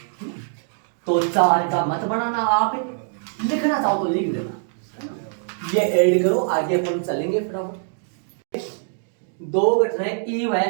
तो 4 का मत बनाना, आप लिखना चाहो तो लिख देना, ये ऐड करो, आगे अपन चलेंगे फटाफट। 2 घटनाएं ई व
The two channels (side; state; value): left; silent; digital silence